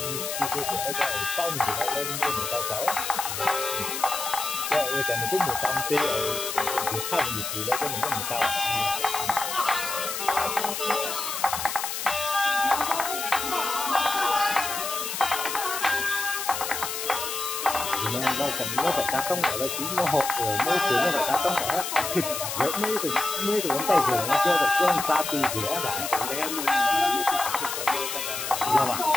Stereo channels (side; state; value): left; noise; hiss, 4 dB below the sound